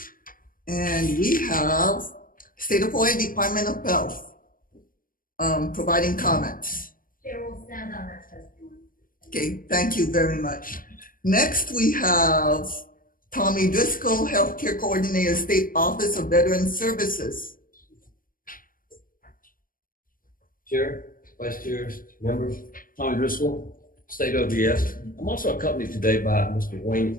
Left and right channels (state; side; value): late; right; 0.41 ms